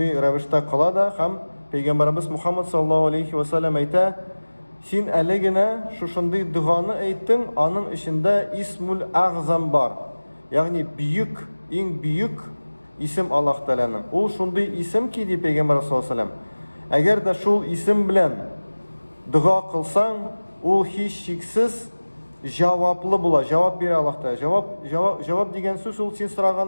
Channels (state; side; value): inverted; both; correlation -1.00